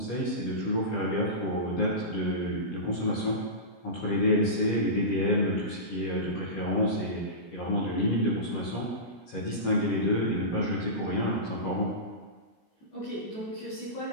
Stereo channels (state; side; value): late; right; 17 ms